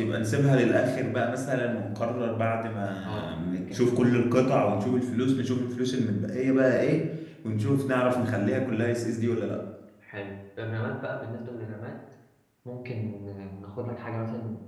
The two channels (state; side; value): identical; both; correlation 1.00